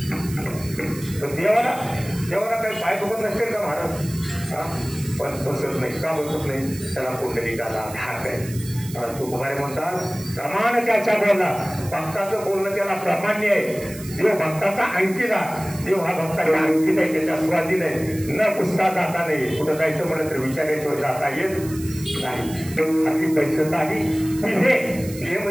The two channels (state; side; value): noise; right; hiss, 15 dB below the sound